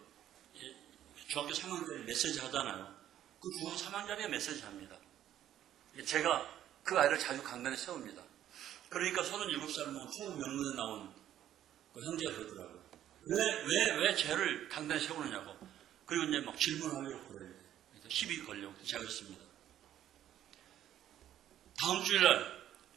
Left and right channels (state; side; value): quieter; left; 11.6 dB